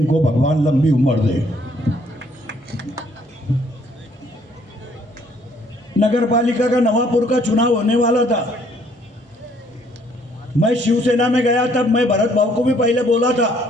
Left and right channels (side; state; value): both; normal; correlation 0.64